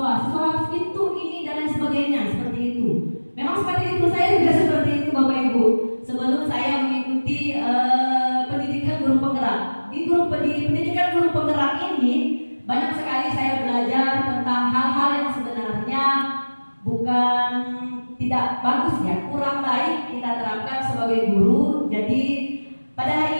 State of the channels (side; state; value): both; inverted; correlation -1.00